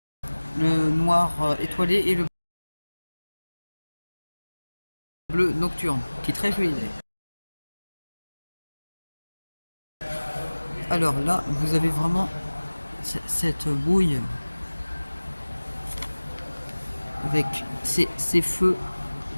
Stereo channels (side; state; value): both; inverted; correlation -1.00